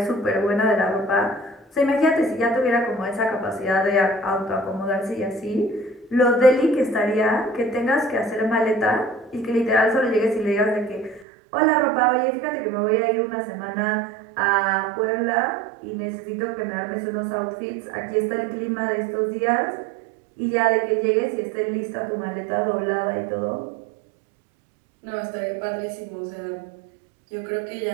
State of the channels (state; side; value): drops out; left; at 11.2 s